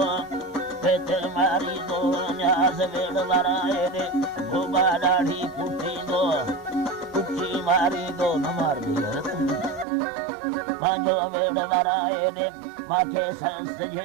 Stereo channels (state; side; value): drops out; left; at 9.9 s